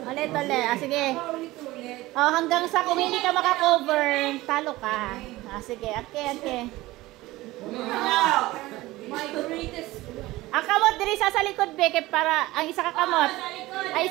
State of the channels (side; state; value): left; quieter; 18.6 dB